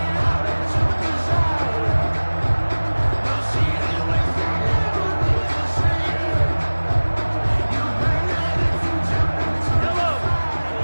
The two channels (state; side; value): inverted; both; correlation -1.00